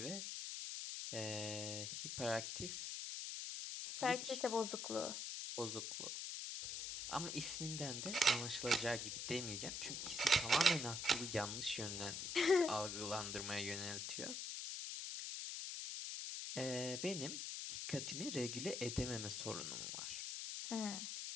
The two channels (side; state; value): left; noise; hiss, 4 dB below the sound